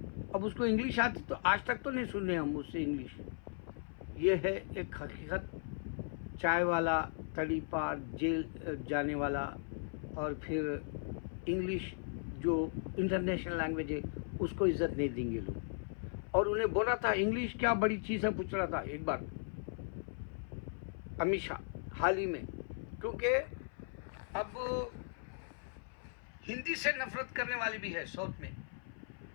अब उसको इंग्लिश आती तो आज तक तो नहीं सुने हम उससे इंग्लिश। ये है एक हकीकत। चाय वाला, तड़ी पार, जेल जाने वाला और फिर इंग्लिश जो इंटरनेशनल लैंग्वेज है उसको इज्जत नहीं देंगे लोग। और उन्हें बोला था इंग्लिश क्या बड़ी चीज़ है, पूछ रहा था एक बार अमित शाह हाल ही में, क्योंकि अब हिंदी से नफरत करने वाले भी है साउथ में।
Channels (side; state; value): right; silent; 53 dB below the other